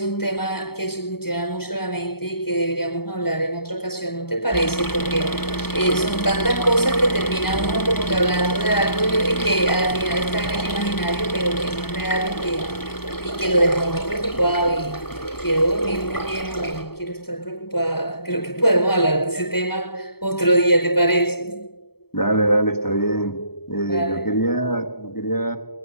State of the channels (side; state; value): right; late; 0.96 ms